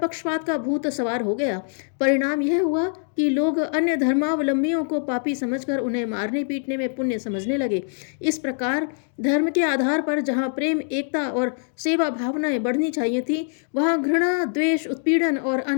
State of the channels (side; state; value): right; silent; 56 dB below the other